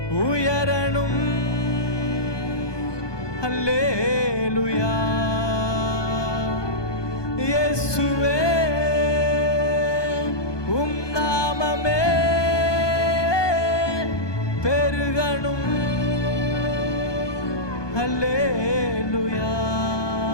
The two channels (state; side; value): late; right; 1.2 ms